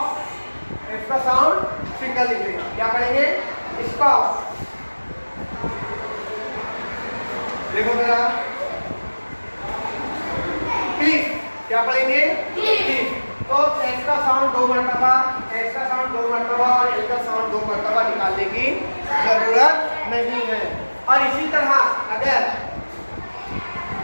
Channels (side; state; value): both; inverted; correlation -1.00